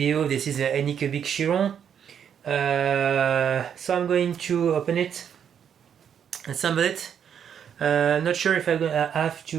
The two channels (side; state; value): left; quieter; 8.3 dB